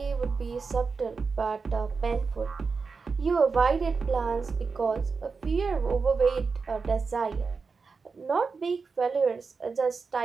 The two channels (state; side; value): quieter; left; 4.8 dB